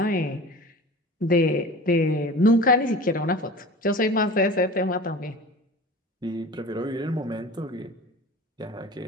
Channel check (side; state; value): both; normal; correlation 0.37